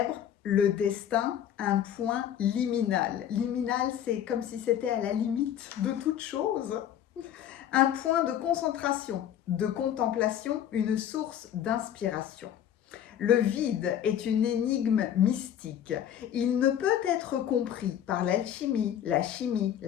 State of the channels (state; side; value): quieter; right; 10.2 dB